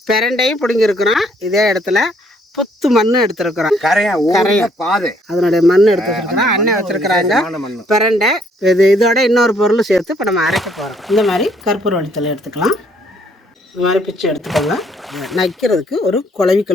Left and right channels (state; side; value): normal; both; correlation 0.66